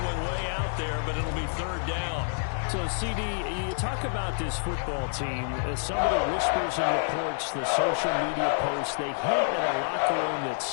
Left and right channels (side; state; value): right; silent; 59 dB below the other